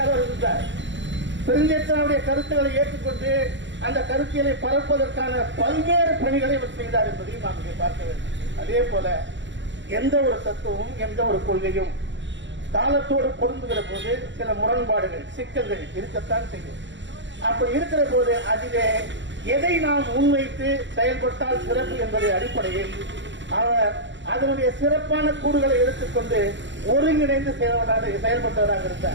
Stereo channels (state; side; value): late; left; 0.53 ms